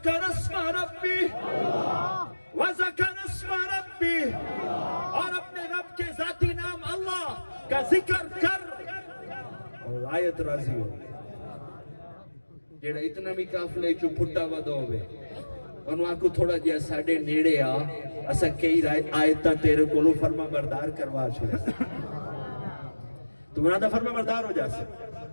अस्मा रब्बी, वज़कर अस्मा रब्बी, और अपने रब के जाती नाम अल्लाह का जिक्र कर और आयत राजी हो। जेड़ा इतना भी काफले चो फुटा वदो होवे ओनु आखो थोड़ा जिहा साडे नेड़े आ, असा कई आयतां तेरे कोलों फरमा बरदार करवा छड़े। तू ना दा फरमा बरदार हो जासे,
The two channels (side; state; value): both; inverted; correlation -1.00